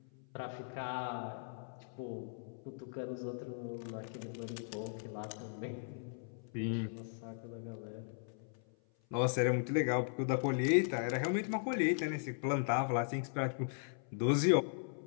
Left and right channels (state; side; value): silent; right; 52 dB below the other